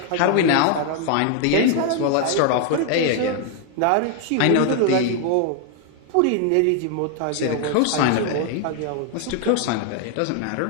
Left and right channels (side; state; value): both; different; correlation 0.00